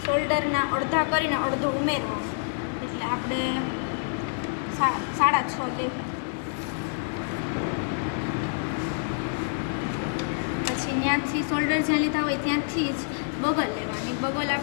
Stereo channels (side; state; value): right; silent; digital silence